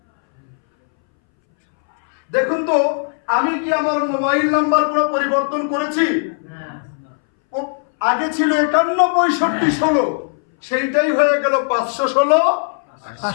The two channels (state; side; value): silent; right; 63 dB below the other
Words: দেখুন তো, আমি কি আমার মোবাইল নাম্বার পুরো পরিবর্তন করেছি? আগে ছিল 51 65 16, সেইটাই হয়ে গেল 516